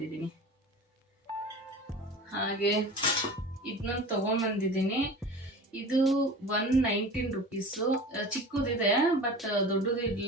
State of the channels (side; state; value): both; normal; correlation 0.36